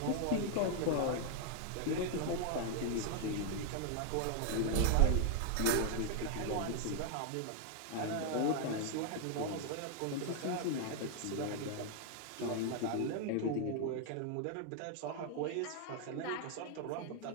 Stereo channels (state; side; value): different; both; correlation 0.00